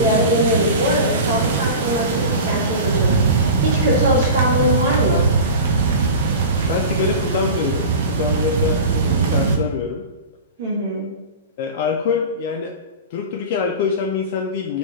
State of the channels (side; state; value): both; inverted; correlation -0.32